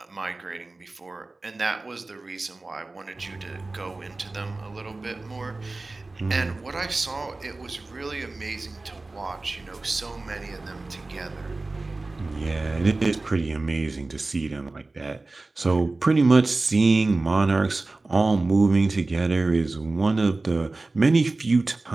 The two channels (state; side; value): quieter; left; 3.3 dB